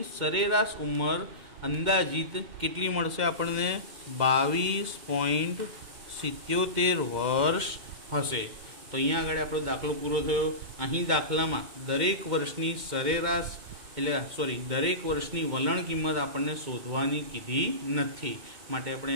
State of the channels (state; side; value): late; left; 2.1 ms